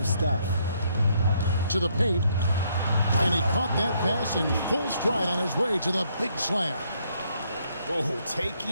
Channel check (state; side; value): inverted; both; correlation -0.71